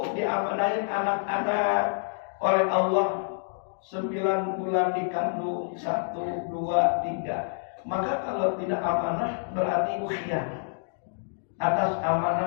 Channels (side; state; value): right; silent; digital silence